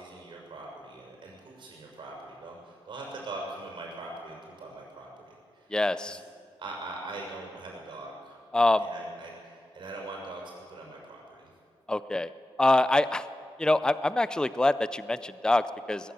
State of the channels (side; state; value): both; normal; correlation 0.93